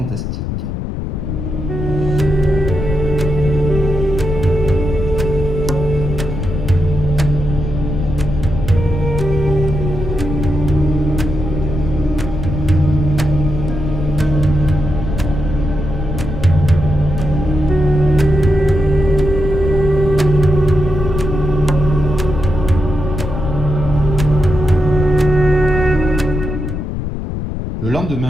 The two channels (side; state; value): left; noise; rumble, 4 dB below the sound